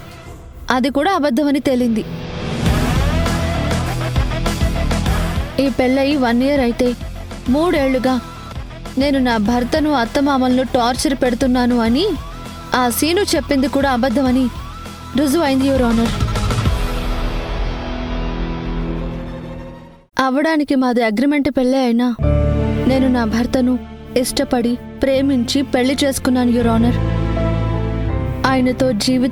అది కూడా అబద్ధమని తేలింది. ఈ పెళ్ళయి 1 year అయితే 3 ఏళ్లుగా నేను నా భర్తను అత్తమామలను టార్చర్ పెడుతున్నాను అని ఆ సీను చెప్పింది కూడా అబద్ధమని రుజువైంది యువర్ ఆనర్. అవడానికి మాది అగ్రిమెంట్ పెళ్ళే అయినా నేను నా భర్తను ఇష్టపడి ప్రేమించి పెళ్లి చేసుకున్నాను యువర్ ఆనర్. ఆయనతో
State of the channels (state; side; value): identical; both; correlation 1.00